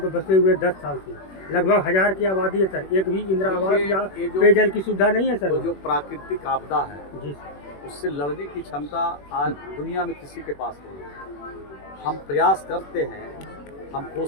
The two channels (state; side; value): late; right; 21 ms